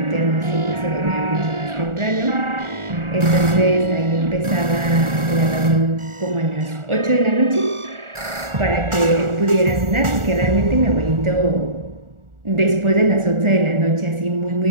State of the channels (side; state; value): left; late; 1.4 ms